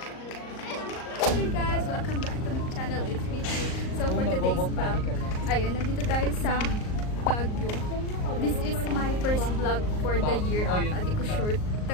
guys, welcome back to my channel. It's me too. So for today's vlog, ayun, nandito tayo sa Baguio. This is my first vlog for the year ata. Di ko sure.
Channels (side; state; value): right; late; 38 ms